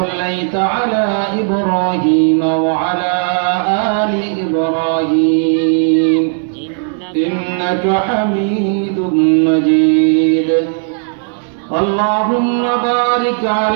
على إبراهيم وعلى آل إبراهيم إنك حميد مجيد اللهم بارك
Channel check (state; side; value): silent; left; 61 dB below the other